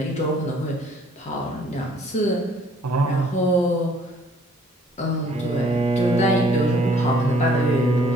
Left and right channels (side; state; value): both; normal; correlation 0.60